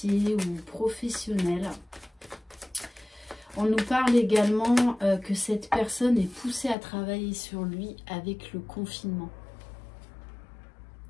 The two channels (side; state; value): right; drops out; at 6.8 s